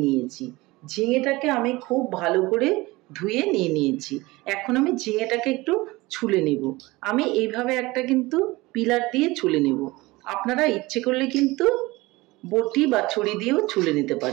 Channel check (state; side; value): quieter; left; 21.2 dB